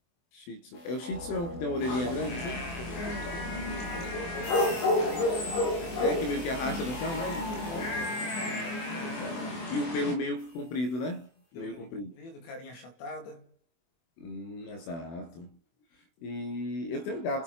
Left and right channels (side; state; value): right; late; 24 ms